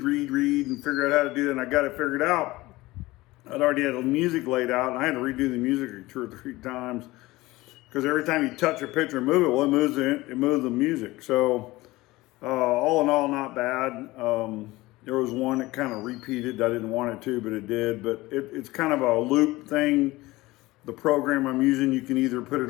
figure out how to do that, and I got it figured out. I'd already had the music laid out, and I had to redo the music 2 or 3 times because every time you touch a picture and move it, well, it moves the music. So all in all, not bad. There was one that kind of repeated. I didn't want it to, but it did. But it's kind of a loop thing. The program I'm using, you can either put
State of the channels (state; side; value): quieter; right; 19.5 dB